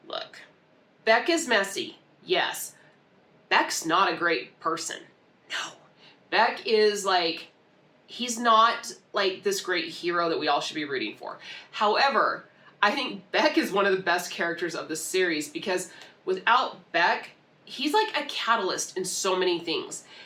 look, Beck is messy, yes. Beck's not a great person, no. Beck is like, he's not like this great hero that we all should be rooting for. However, I think Beck is one of the best characters of the series because without Beck, he's like a catalyst in so many things.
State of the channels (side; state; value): both; identical; correlation 1.00